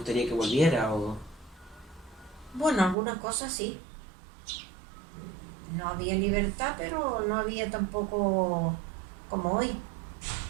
que volviera o...? Bueno, algunas cosas sí. No había libertad, pero no había tampoco como hoy,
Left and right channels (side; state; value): left; drops out; at 3.0 s